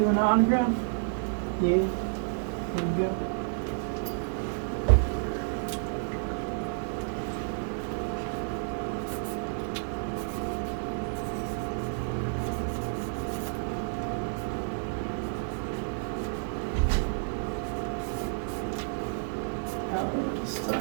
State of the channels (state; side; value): silent; left; digital silence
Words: the autograph? Yeah. There you go.